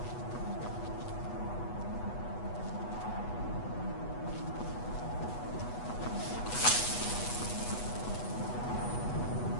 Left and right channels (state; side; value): late; right; 8.2 ms